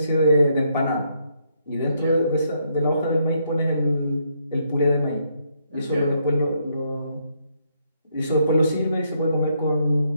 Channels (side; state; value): both; inverted; correlation -0.74